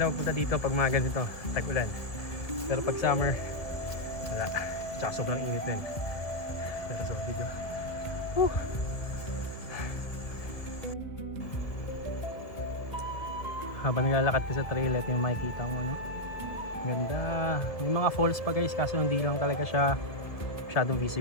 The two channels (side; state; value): right; late; 1.8 ms